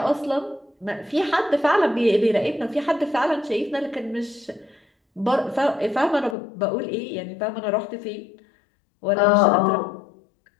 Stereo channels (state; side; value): drops out; right; at 6.4 s